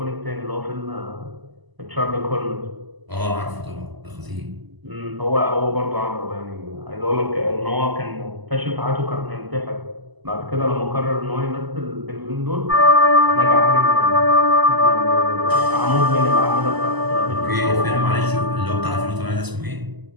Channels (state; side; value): late; left; 1.0 ms